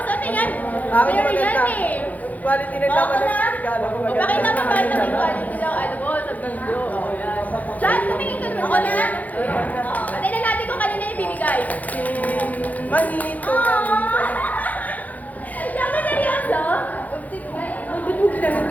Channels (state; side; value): late; right; 0.078 ms